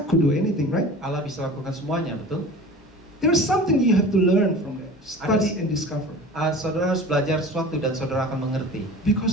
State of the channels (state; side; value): normal; both; correlation 0.38